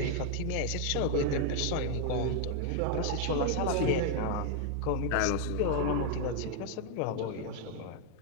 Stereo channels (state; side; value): different; both; correlation 0.00